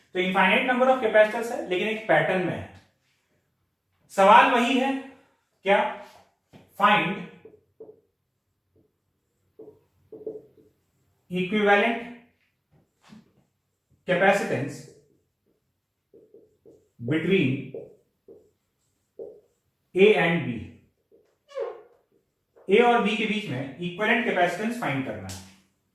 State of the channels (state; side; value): identical; both; correlation 1.00